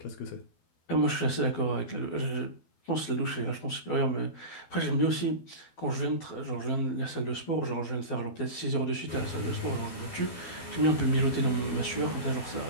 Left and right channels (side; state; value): right; late; 12 ms